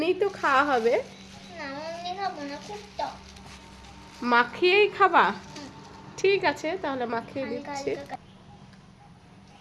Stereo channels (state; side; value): identical; both; correlation 1.00